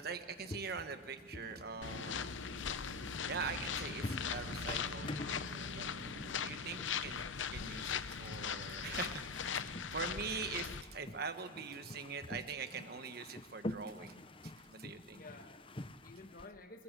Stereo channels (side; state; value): both; normal; correlation 0.16